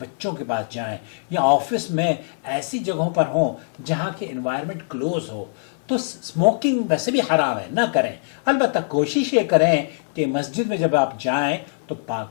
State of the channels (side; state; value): right; silent; digital silence